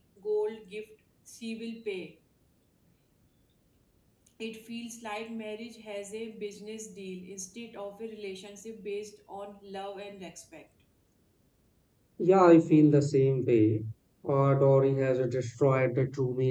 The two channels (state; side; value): identical; both; correlation 1.00